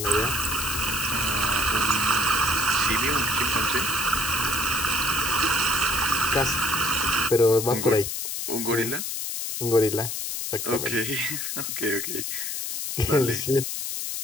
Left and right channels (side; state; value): left; noise; hiss, 3 dB below the sound